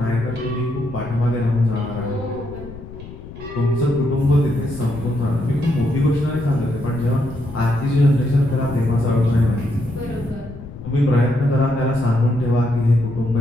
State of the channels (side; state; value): left; noise; rumble, 14 dB below the sound